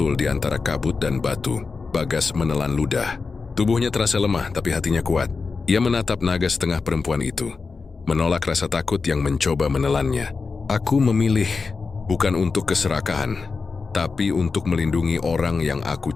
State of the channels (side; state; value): right; quieter; 4.5 dB